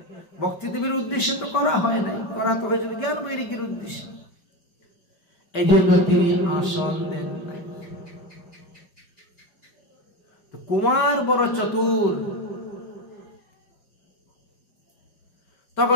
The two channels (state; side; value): late; right; 5.2 ms